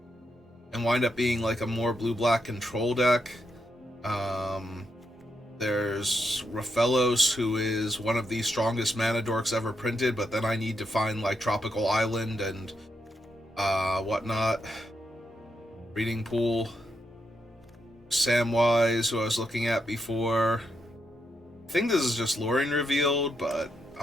and wind up being like a more blue-black control deck. There's Raphelos, who is one of the strongest mana dorks ever printed, but then I need to find, like, Tropical Island and whatnot. Reading Pool. Samwise, who I was looking at before. I think this is just Lorien revealed, but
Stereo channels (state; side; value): normal; both; correlation 0.82